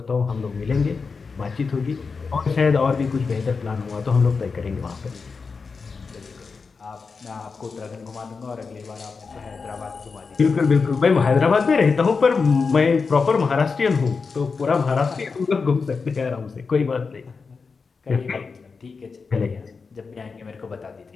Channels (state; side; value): quieter; right; 4.9 dB